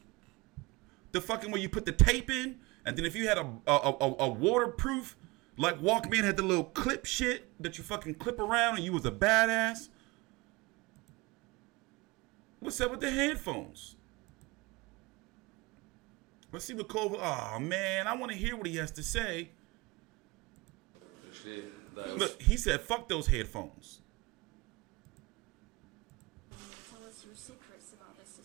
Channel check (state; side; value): quieter; left; 23.8 dB